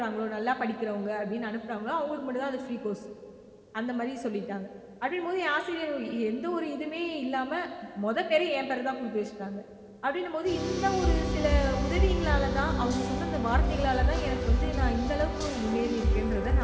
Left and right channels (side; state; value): both; identical; correlation 1.00